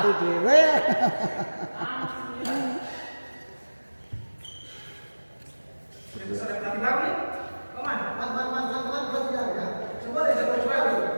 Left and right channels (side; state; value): both; inverted; correlation -1.00